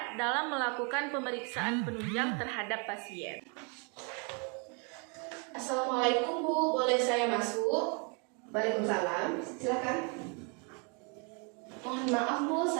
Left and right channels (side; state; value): left; quieter; 35.0 dB